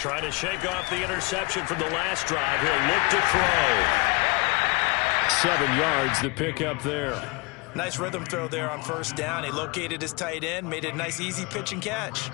to shake off the interception from the last drive. He'll look to throw. 7 yards the pickup there. Nice rhythm throw there on first down. He located his tight end, made a nice easy pitch and catch.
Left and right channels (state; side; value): quieter; right; 26.6 dB